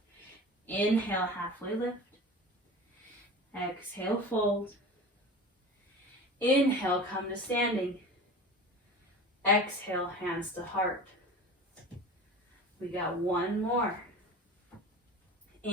Inhale, halfway lift. Exhale, fold. Inhale, come to standing. Exhale, hands to heart. We got one more.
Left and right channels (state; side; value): normal; both; correlation 0.34